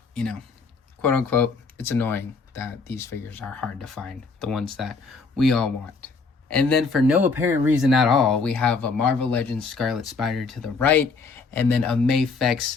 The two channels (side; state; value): right; quieter; 4.5 dB